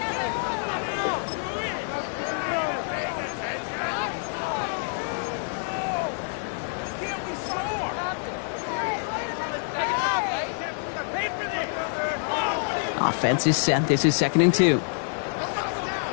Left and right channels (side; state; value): right; silent; digital silence